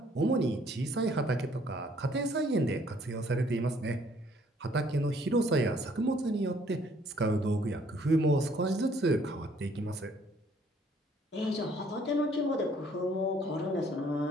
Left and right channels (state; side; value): normal; both; correlation 0.62